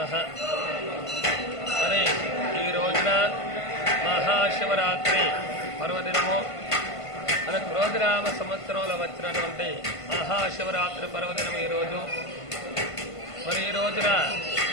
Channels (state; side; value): late; right; 1.5 ms